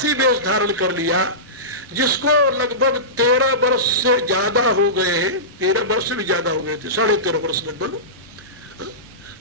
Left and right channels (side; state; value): both; normal; correlation -0.20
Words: वेश धारण कर लिया, जिसको लगभग 13 वर्ष से ज्यादा हो गए हैं, 13 वर्ष से भी ज्यादा हो गए थे, 13.5 वर्ष लगभग,